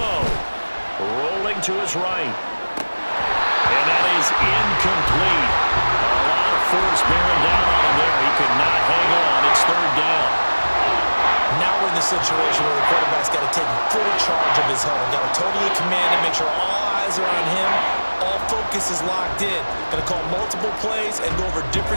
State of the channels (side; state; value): both; inverted; correlation -1.00